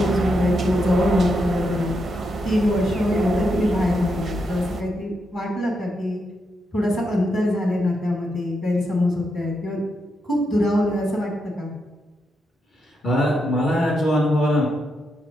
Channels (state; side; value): normal; both; correlation 0.83